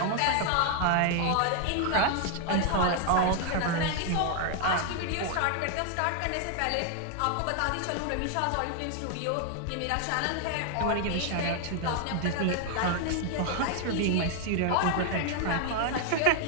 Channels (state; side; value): different; both; correlation 0.00